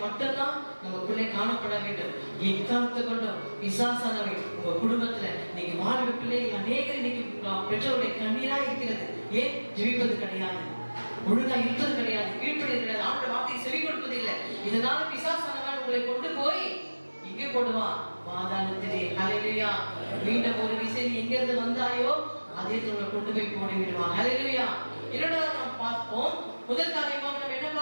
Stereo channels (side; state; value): both; inverted; correlation -1.00